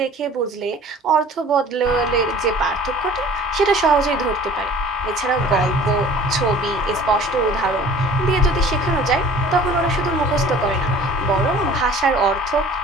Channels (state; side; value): normal; both; correlation 0.47